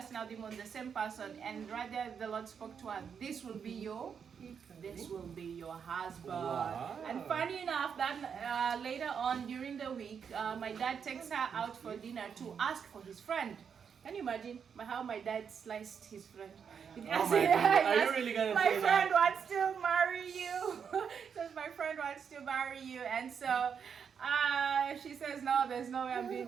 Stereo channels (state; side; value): quieter; left; 7.0 dB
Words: out demons, the same person. And right there, the Lord spoke to her, this will be your husband. Wow. And funny enough, that later on during the week, my dad takes her out for dinner to ask for his friend. Can you imagine how my dad sliced his friend? Oh my God. Are you really gonna my say friend that? wants to marry you. Says my friend wants to marry you, and so she says no, there's no way I'm doing